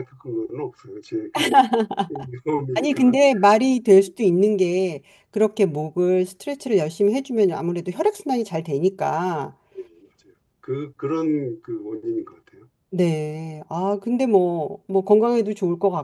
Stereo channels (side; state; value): both; identical; correlation 1.00